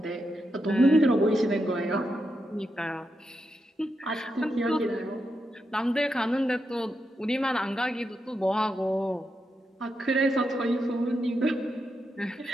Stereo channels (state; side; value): normal; both; correlation 0.85